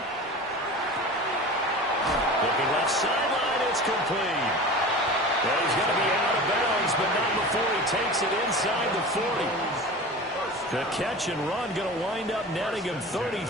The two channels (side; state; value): both; normal; correlation 0.34